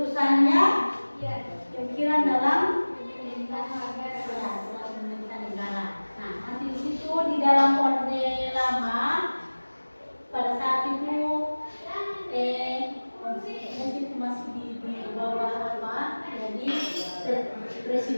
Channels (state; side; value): inverted; both; correlation -1.00